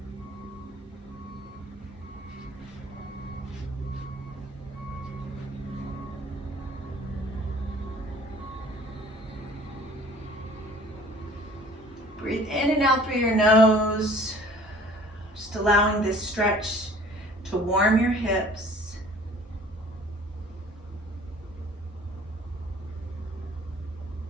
Breathe in and out through your nose, just allowing this stretch to warm your hips.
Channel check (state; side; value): normal; both; correlation 0.51